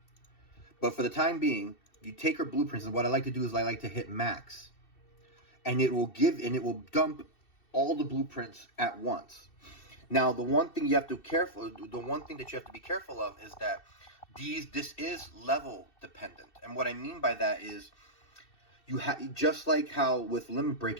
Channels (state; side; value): late; right; 2.7 ms